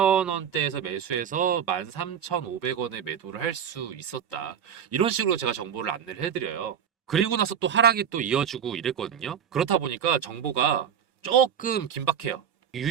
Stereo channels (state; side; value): quieter; left; 8.5 dB